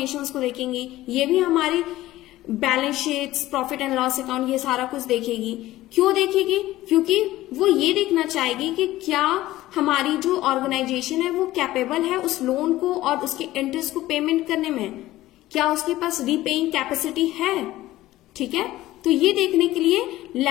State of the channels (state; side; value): quieter; right; 16.0 dB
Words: को देखेंगी, ये भी हमारी balance sheets, profit and loss account, ये सारा कुछ देखेगी। क्यों देखेगी? क्योंकि वो ये देखना चाहेगी कि क्या हमारी जो ऑर्गेनाइजेशन है वो कैपेबल है उस लोन को और उसके इंटरेस्ट को पेमेंट करने में, क्या उसके पास रीपेइंग कैपेसिटी है, ठीक है। तो ये देखने के लिए